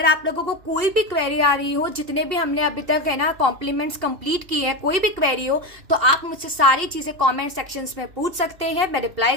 आप लोगों को कोई भी क्वेरी आ रही हो, जितने भी हमने अभी तक है ना कॉम्प्लीमेंट्स कंप्लीट किए हैं, कोई भी क्वेरी हो तो आप मुझसे सारी चीजें कमेंट सेक्शंस में पूछ सकते हैं, मैं रिप्लाई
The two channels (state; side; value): late; left; 2.7 ms